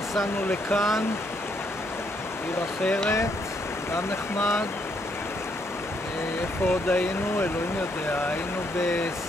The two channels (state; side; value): noise; right; hum, 19 dB below the sound